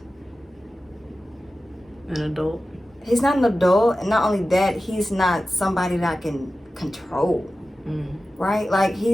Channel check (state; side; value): normal; both; correlation 0.94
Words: an adult. He's not an adult, and not only that, he's not somebody that I can control, right? Like,